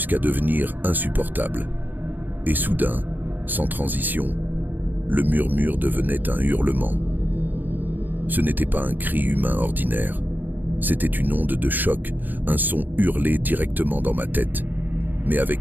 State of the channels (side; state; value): left; late; 0.087 ms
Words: devenir insupportable. Et soudain, sans transition, le murmure devenait un hurlement. Ce n'était pas un cri humain ordinaire. C'était une onde de choc, un son hurlé directement dans ma tête, mais